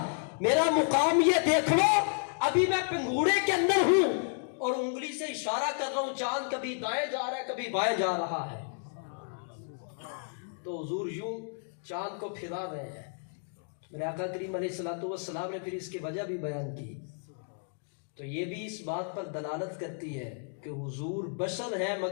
میرا مقام یہ دیکھ لو, ابھی میں پنگھوڑے کے اندر ہوں اور انگلی سے اشارہ کر رہا ہوں, چاند کبھی دائیں جا رہا ہے کبھی بائیں جا رہا ہے. تو حضور یوں چاند کو پھرا رہے ہیں. میرے آقا کریم علیہ الصلوۃ والسلام نے پھر اس کی وجہ بھی بیان کی. تو یہ بھی اس بات پر دلالت کرتی ہے کہ حضور بشر ہے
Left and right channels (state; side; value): silent; right; 57 dB below the other